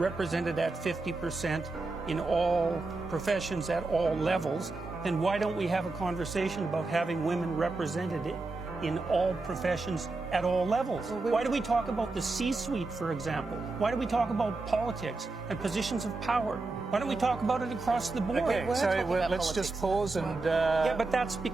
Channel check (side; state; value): left; quieter; 3.5 dB